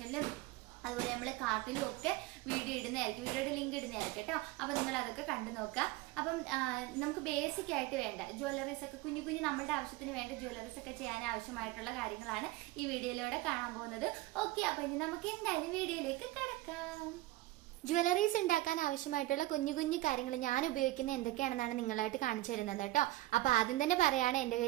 അതുപോലെ നമ്മൾ കാർട്ടിലും ഒക്കെ വീഡിയോ ഇടുന്നതായിരിക്കും, വീഡിയോയുടെ ലിങ്ക് ഇടുന്നതായിരിക്കും കേട്ടോ. അപ്പോൾ നിങ്ങൾ അതൊക്കെ കണ്ടു നോക്കുക. അപ്പം നമുക്ക് ബേസിക് ആയിട്ട് വേണ്ട ജ്വല്ലറീസ് ഒക്കെ കുഞ്ഞു കുഞ്ഞു നമ്മുടെ ആവശ്യത്തിന് വേണ്ട ജ്വല്ലറീസ് ഒക്കെ ചെയ്യാൻ ആവശ്യമായിട്ടുള്ള കാര്യങ്ങളാണ് ഈ വീഡിയോയിലൂടെ കാണാൻ പോകുന്നത്. ഓക്കെ, അപ്പോൾ ഇനി നമുക്ക് എന്തായാലും വീഡിയോയിലേക്ക് കിടക്കാം. ജ്വല്ലറീസ് ഉണ്ടാക്കാൻ ആവശ്യമായിട്ടുള്ള കുഞ്ഞു കുഞ്ഞു കാര്യങ്ങൾ ഞാൻ ഉപയോഗിക്കുന്ന എന്തൊക്കെയാണെന്നാണ് നിങ്ങളായിട്ട് കാണിച്ചു തരുന്നത് കേട്ടോ. അപ്പോൾ ആദ്യം തന്നെ പറയാണ്, എൻ്റെ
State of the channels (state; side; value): quieter; left; 17.9 dB